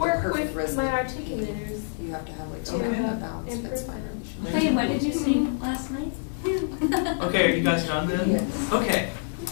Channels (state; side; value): silent; right; digital silence